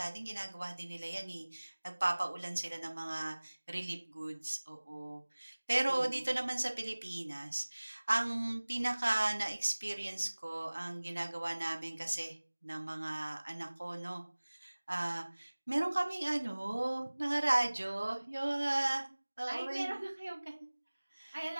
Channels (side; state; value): both; inverted; correlation -1.00